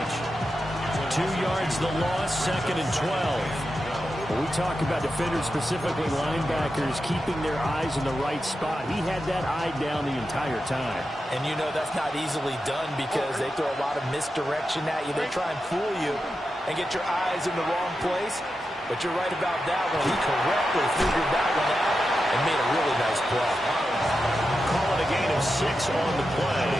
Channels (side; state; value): both; normal; correlation 0.89